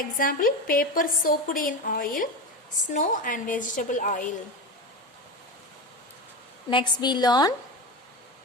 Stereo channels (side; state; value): both; normal; correlation 0.23